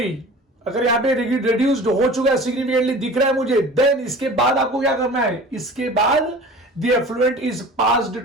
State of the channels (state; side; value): normal; both; correlation 0.41